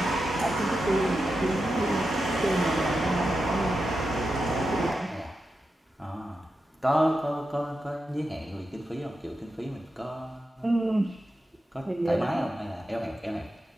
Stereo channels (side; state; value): both; normal; correlation 0.89